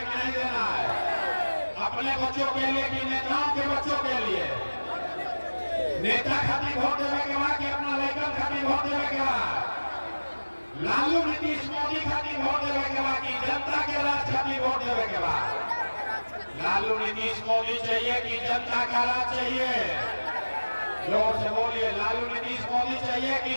कि नहीं देना है? अपने बच्चों के लिए कि नेताओं के बच्चों के लिए? नेता खातिर वोट देवे के बाद कि अपना लड़कन खातिर वोट देवे के बाद? लालू नीतीश मोदी खातिर वोट देवे के बाद कि जनता के राज खातिर वोट देवे के बाद? लालू नीतीश मोदी चाहिए कि जनता का राज चाहिए? जोर से बोलिए, लालू नीतीश मोदी चाहिए कि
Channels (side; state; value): both; inverted; correlation -1.00